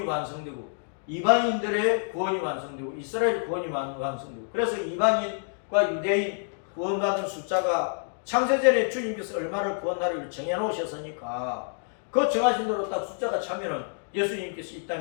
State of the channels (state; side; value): silent; right; digital silence